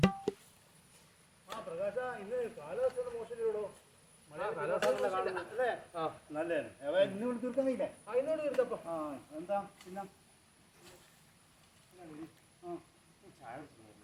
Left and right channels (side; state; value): both; identical; correlation 1.00